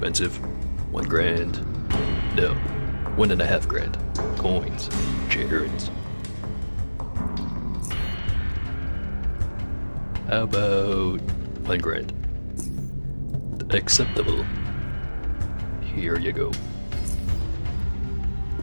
1 grand. No, 1.5 grand. Coins. Charons. How about 1 grand? Acceptable. Here you go.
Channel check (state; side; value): inverted; both; correlation -1.00